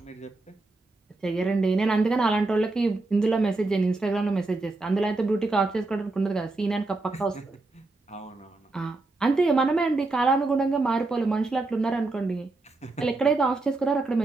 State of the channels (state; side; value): quieter; left; 3.3 dB